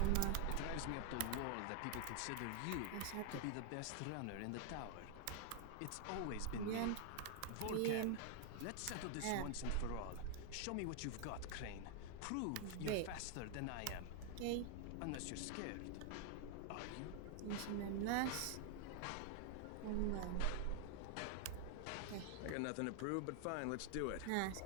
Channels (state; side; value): different; both; correlation 0.00